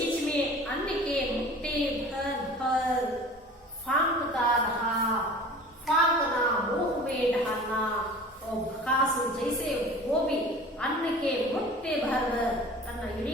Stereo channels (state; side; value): normal; both; correlation 0.42